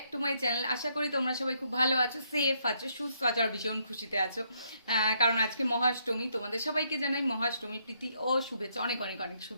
to my channel. आशा करी तुम्हारा सबाई खूब भालो आछो, सेफ आछो, सुस्थ आछो और भीषण खुशीते आछो कारण आज के महाअष्टमी। तुम्हारे सबाइके जानाई महाअष्टमी प्रীতি ओ शुभेच्छा, अनेक अनेक अनेक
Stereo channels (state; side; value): inverted; both; correlation -0.73